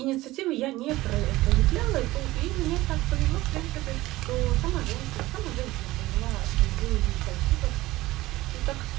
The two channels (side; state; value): left; quieter; 18.0 dB